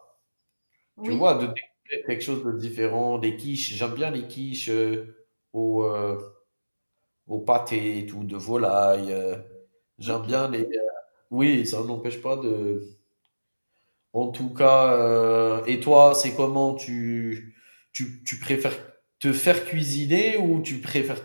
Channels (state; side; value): inverted; both; correlation -1.00